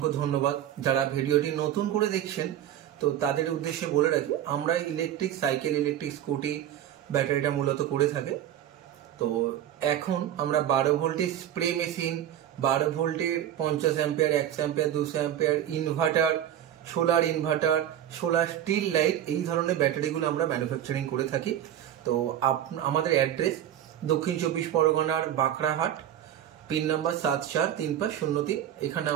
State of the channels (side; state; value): left; quieter; 11.1 dB